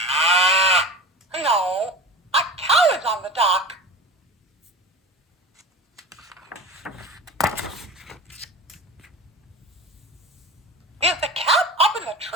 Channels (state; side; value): normal; both; correlation 0.34